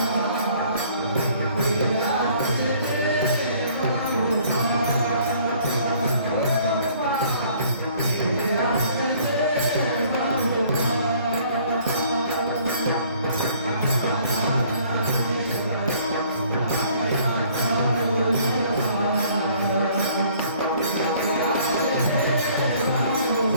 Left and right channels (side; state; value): both; inverted; correlation -0.58